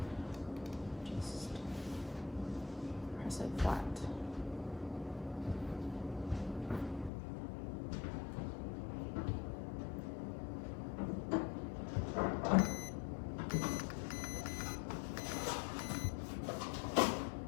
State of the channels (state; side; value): drops out; right; at 7.1 s